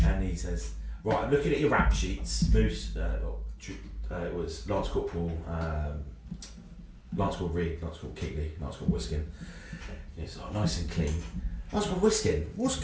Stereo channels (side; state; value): both; identical; correlation 1.00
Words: and he says, right, I'm looking at your rap sheets, Moose. It was Lance Corporal Reed, Lance Corporal Keatley, Lance Corporal Whisken. It's nice and clean. Lance Corporal Whisken, what's